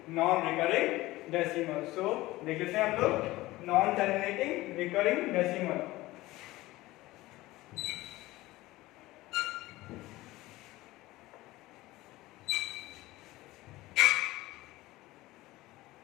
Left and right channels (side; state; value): right; quieter; 18.4 dB